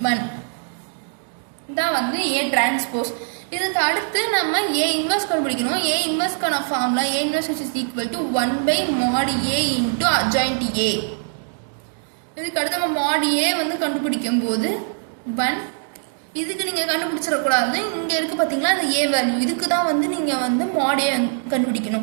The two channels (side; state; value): left; silent; digital silence